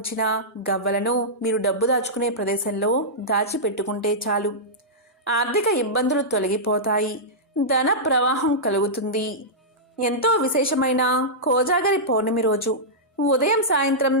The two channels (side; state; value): both; normal; correlation -0.12